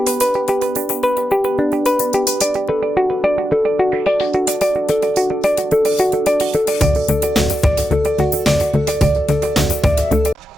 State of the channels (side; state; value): both; normal; correlation 0.88